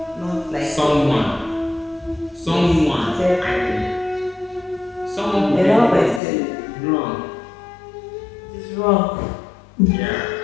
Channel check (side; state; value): right; drops out; at 6.2 s